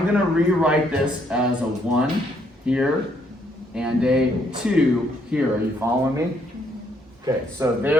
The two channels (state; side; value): normal; both; correlation 0.70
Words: going to rewrite this as a 1 here and a 2 here. Are you following me? Okay, so